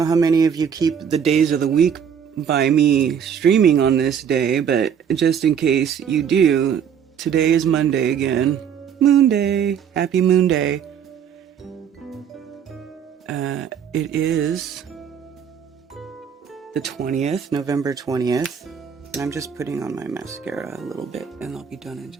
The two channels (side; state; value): left; quieter; 7.9 dB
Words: how many of you keep the days of the week by me streaming on this day, but just in case you do, today is Monday again. Moonday. Happy Moonday. It is the 20th, November 20th. And I'm just putting on my mascara a little bit, and I'll be done in